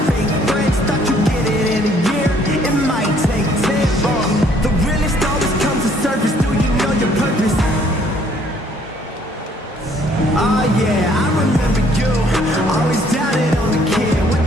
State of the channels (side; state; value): both; normal; correlation 0.62